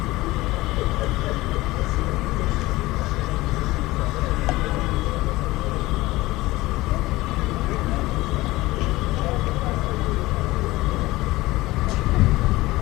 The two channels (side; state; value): right; quieter; 19.2 dB